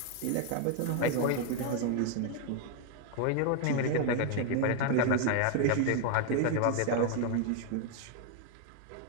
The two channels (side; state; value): both; different; correlation 0.00